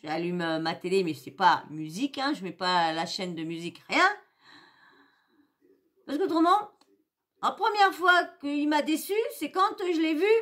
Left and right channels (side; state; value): both; identical; correlation 1.00